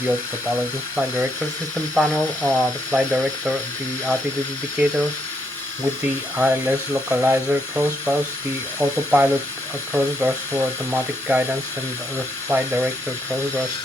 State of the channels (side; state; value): both; normal; correlation 0.76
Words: the autopilot and flight director system panel, the flight director, the altitude indicator, with the ILS localizer crossbars, the autopilot crossbars for automatic guidance, and the flight director crossbars